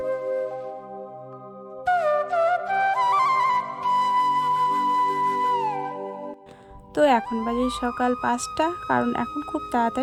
তো এখন বাজে সকাল 5টা, কারণ এখন খুব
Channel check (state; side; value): identical; both; correlation 1.00